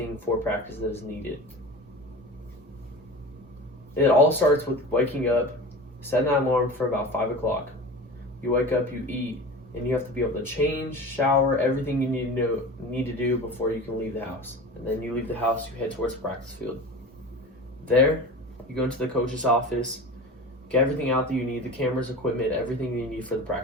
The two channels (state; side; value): normal; both; correlation 0.33